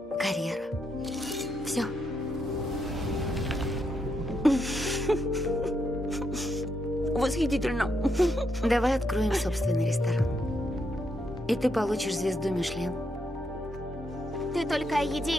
карьера. Все. Восхитительно. Давай откроем собственный ресторан. И ты получишь звезду Мишлен. Ты только о еде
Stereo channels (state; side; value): normal; both; correlation 0.79